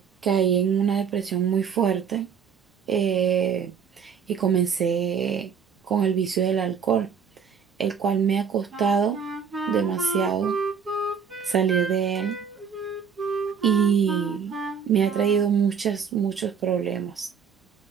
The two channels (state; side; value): quieter; left; 6.9 dB